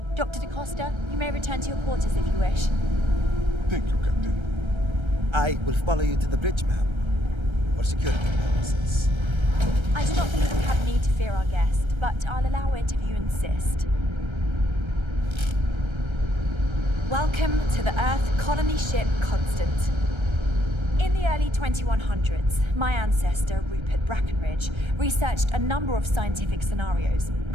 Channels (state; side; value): late; left; 1.3 ms